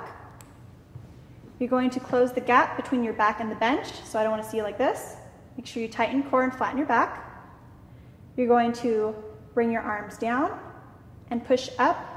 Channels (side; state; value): both; identical; correlation 1.00